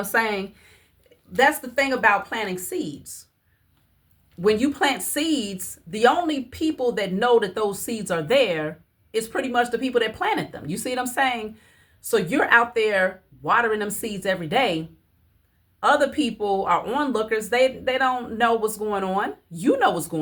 saying? That's the thing about planting seeds. when you plant seeds, the only people that know that those seeds are there is pretty much the people that planted them. You see what I'm saying? So you're out there watering them seeds every day. Other people are onlookers. They don't know what's going on. You know what's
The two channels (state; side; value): identical; both; correlation 1.00